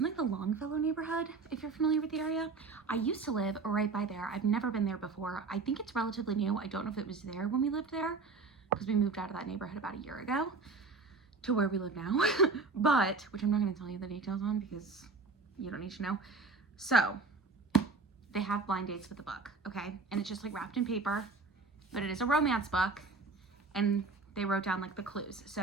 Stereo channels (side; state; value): left; quieter; 4.2 dB